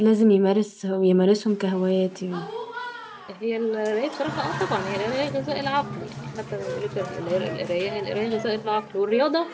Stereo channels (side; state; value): both; identical; correlation 1.00